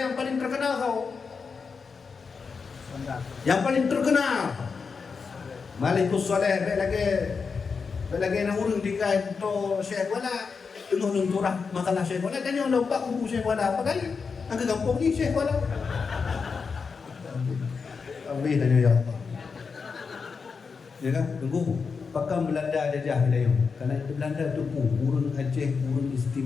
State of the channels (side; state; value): right; quieter; 5.3 dB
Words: paling terkenal kau. Yang paling terkenal Malikus Saleh lagi nak urung dikai to Syekh Wala tengah lenturah masalah Syekh Wala dan yang lupa kubu Syekh Wala apa kali angka kampung ni Syekh Wala ambil tanya ya Allah ya kan tunggu pakam Belanda jajah wilayah karena Belanda tu urung Aceh urung